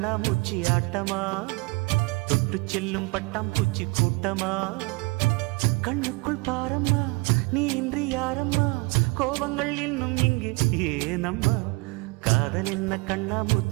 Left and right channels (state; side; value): quieter; left; 26.8 dB